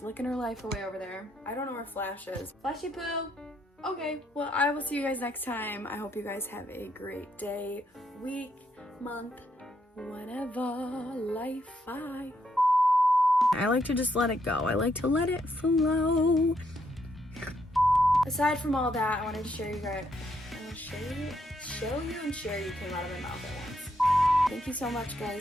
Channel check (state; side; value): normal; both; correlation 0.76